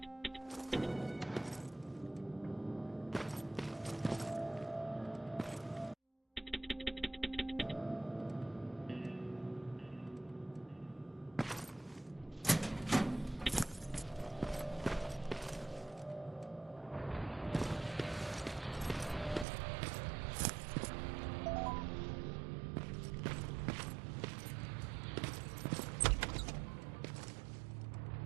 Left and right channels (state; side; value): drops out; left; at 19.5 s